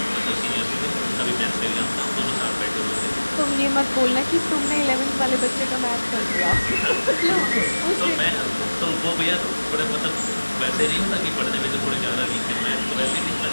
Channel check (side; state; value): both; inverted; correlation -1.00